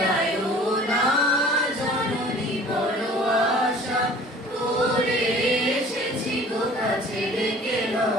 না জননী বড় আশা করে এসেছি গো কাছে রেখে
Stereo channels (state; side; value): normal; both; correlation 0.48